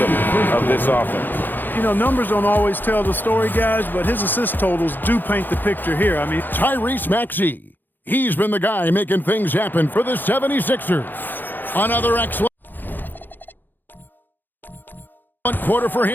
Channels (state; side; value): late; right; 0.090 ms